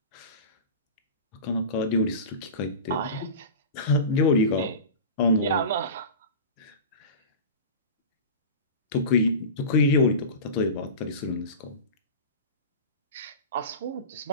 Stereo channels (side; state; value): both; inverted; correlation -0.31